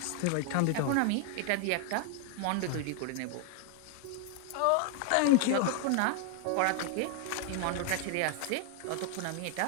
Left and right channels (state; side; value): different; both; correlation 0.00